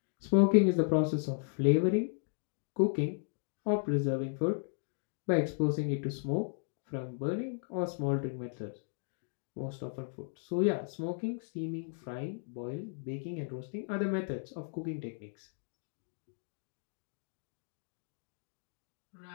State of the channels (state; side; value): silent; right; digital silence